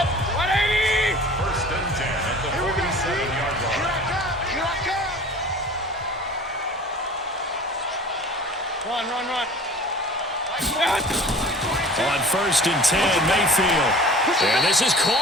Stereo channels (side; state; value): both; normal; correlation 0.43